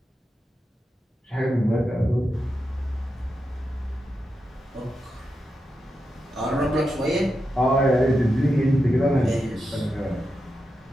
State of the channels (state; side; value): normal; both; correlation 0.88